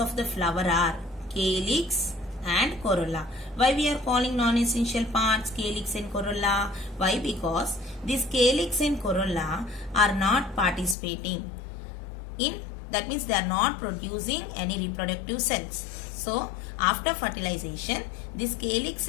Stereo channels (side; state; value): right; drops out; at 11.0 s